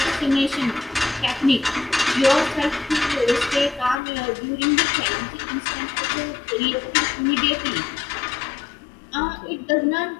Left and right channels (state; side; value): drops out; right; at 4.0 s